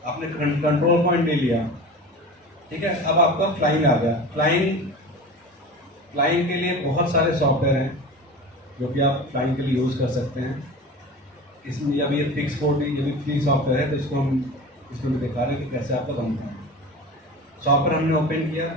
आपने कंट्रोल पॉइंट ले लिया, ठीक है। अब आपका फ्लाइंग आ गया। फ्लाइंग के लिए बहुत सारे सॉफ्टवेयर हैं जो कि आप फ्लाइंग के लिए यूज़ कर सकते हैं। इसमें अभी ये फिक्स कोड ये भी फ्री सॉफ्टवेयर है, तो इसको हम इसमें भी दिखा रहे हैं कि कैसे आपका बनता है। सॉफ्टवेयर हमने ओपन किया,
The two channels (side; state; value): both; normal; correlation 0.34